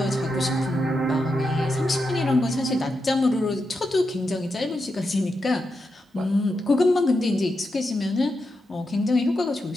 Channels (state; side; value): normal; both; correlation 0.86